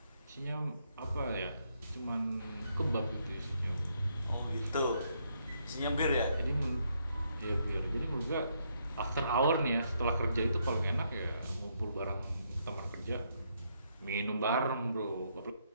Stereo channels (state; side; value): inverted; both; correlation -0.75